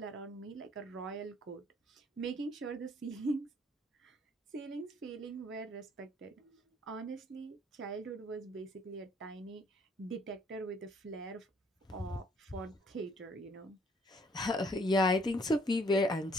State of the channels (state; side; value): normal; both; correlation 0.63